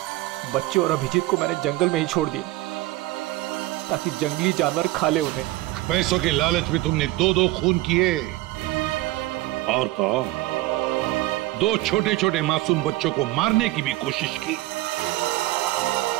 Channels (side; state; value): left; quieter; 18.0 dB